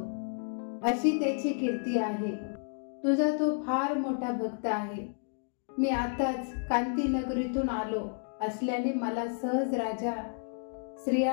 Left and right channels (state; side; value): silent; right; 55 dB below the other